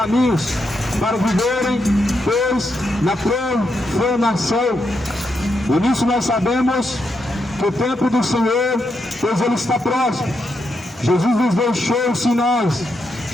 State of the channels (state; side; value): normal; both; correlation 0.82